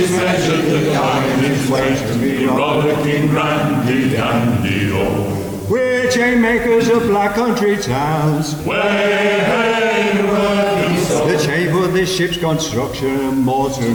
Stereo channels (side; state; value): both; identical; correlation 1.00